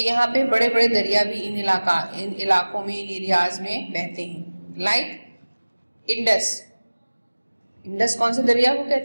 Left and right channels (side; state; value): both; inverted; correlation -1.00